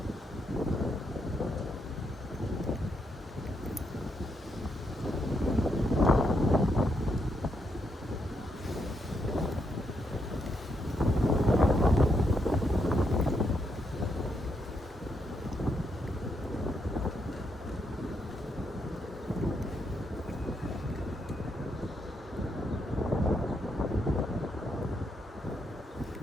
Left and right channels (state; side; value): normal; both; correlation 0.79